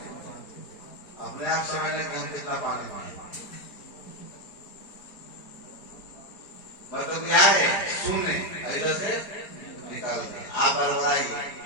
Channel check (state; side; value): late; right; 4.2 ms